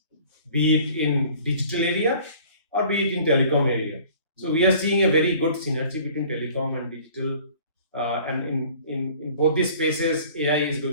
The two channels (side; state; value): both; inverted; correlation -0.50